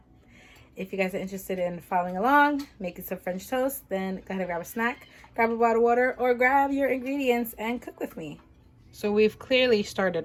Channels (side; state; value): both; identical; correlation 1.00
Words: if you guys are interested in following along, making some French toast, then go ahead and grab a snack, grab a bottle of water, or grab your ingredients and cook with me. So we've clearly